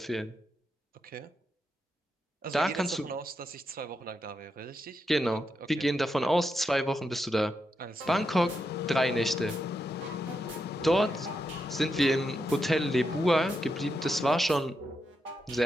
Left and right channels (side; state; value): both; normal; correlation 0.84